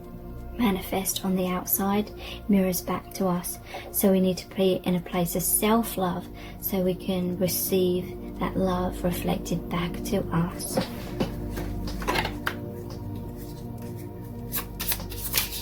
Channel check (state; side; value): identical; both; correlation 1.00